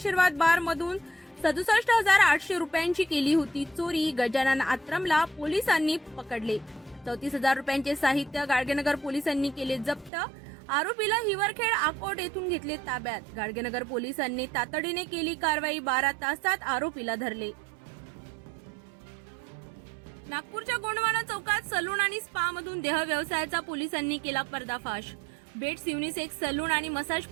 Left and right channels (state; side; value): drops out; left; at 10.1 s